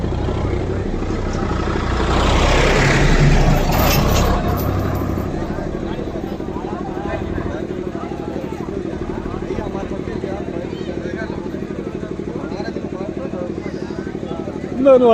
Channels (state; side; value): identical; both; correlation 1.00